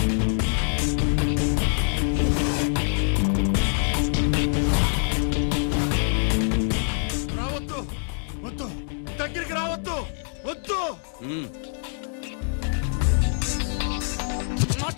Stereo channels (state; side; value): silent; right; 62 dB below the other